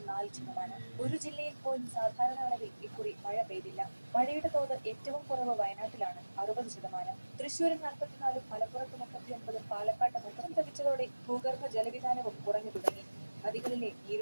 ഒരു ജില്ലയിൽ പോലും സാധാരണ അളവിൽ ഇക്കുറി മഴ പെയ്തില്ല. മഴയുടെ തോത് ഏറ്റവും കുറവ് വയനാട്ടിലാണ്, 60%. തൃശൂരിൽ 44, മലപ്പുറത്ത് 39, പാലക്കാട്ട് 30 ലഭിച്ചതോടെ ഭൂഗർഭ ജലവിധാനവും കുറഞ്ഞു തുടങ്ങി. നദികളിലെ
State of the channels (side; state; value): both; inverted; correlation -1.00